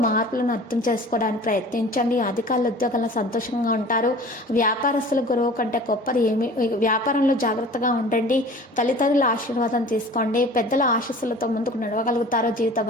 మార్పులను అర్థం చేసుకోవడానికి ప్రయత్నించండి. అధికారుల ఉద్యోగాల్లో సంతోషంగా ఉంటారు. వ్యాపారస్తుల గురువు కంటే గొప్పది ఏమి. వ్యాపారంలో జాగ్రత్తగా ఉండండి. తల్లిదండ్రుల ఆశీర్వాదం తీసుకోండి. పెద్దల ఆశీస్సులతో ముందుకు నడవగలుగుతారు. జీవిత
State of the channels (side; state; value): both; normal; correlation 0.43